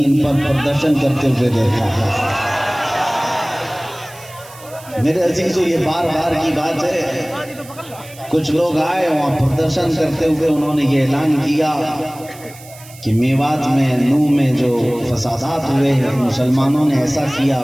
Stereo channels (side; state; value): right; noise; hiss, 20 dB below the sound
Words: پر پردرشن کرتے ہوئے دیکھا ہے۔ میرے عزیزو یہ بار بار کی بات ہے، کچھ لوگ آئے وہاں پردرشن کرتے ہوئے انہوں نے یہ اعلان کیا کہ میوات میں نو میں جو فسادات ہوئے ہیں مسلمانوں نے ایسا کیا